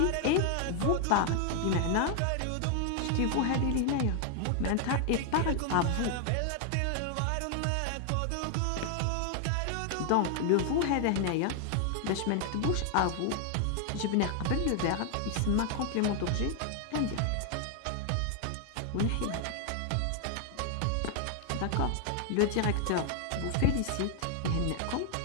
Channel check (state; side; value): different; both; correlation 0.00